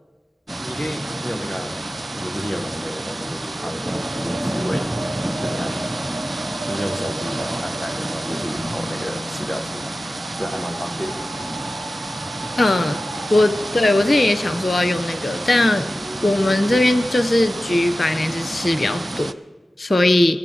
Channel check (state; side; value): normal; both; correlation 0.95